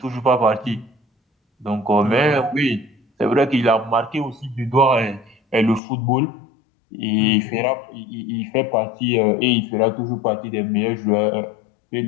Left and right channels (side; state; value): right; drops out; at 5.8 s